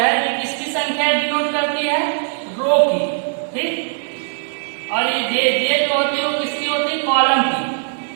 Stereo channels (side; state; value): left; silent; 66 dB below the other